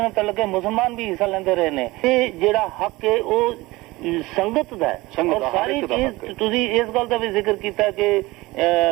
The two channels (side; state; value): left; quieter; 20.6 dB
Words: ਤਲਕ ਹੈ ਮੁਸਲਮਾਨ ਵੀ ਹਿੱਸਾ ਲੈਂਦੇ ਰਹੇ ਨੇ। ਇਹ ਜਿਹੜਾ ਹੱਕ ਹੈ ਉਹ ਸੰਗਤ ਦਾ ਹੈ। ਔਰ ਸਾਰੀ ਚੀਜ਼ ਤੁਸੀਂ ਇਸ ਗੱਲ ਦਾ ਵੀ ਜ਼ਿਕਰ ਕੀਤਾ ਕਿ